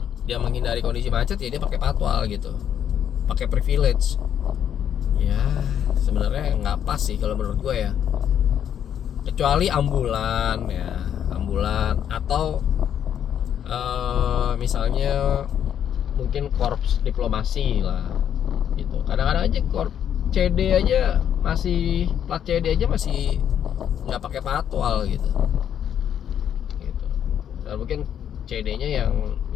dia menghindari kondisi macet ya dia pakai patwal gitu, pakai privilege ya. Sebenarnya nggak pas sih kalau menurut gue ya, kecuali ambulan ya, ambulan atau misalnya mungkin korps diplomasi lah gitu. Kadang-kadang aja korps CD aja masih, plat CD aja masih nggak pakai patwal gitu. Dan mungkin CD-nya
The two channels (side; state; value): right; quieter; 9.3 dB